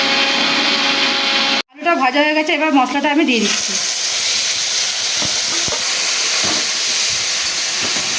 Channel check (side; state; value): both; identical; correlation 1.00